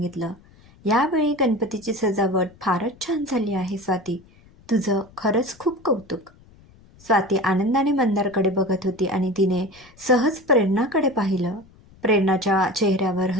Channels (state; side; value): noise; left; rumble, 26 dB below the sound